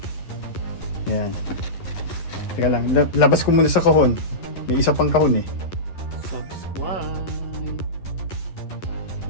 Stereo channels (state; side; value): late; right; 11 ms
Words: Ayan. Teka lang. Labas ko muna sa kahon. May isa pang kahon eh. Subscribe.